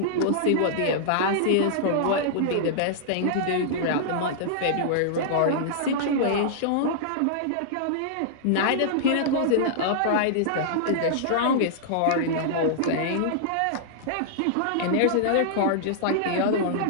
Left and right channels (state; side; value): different; both; correlation -0.02